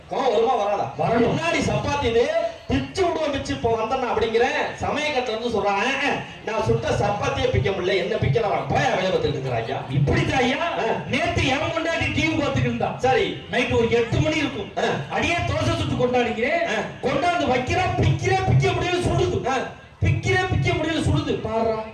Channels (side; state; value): both; identical; correlation 1.00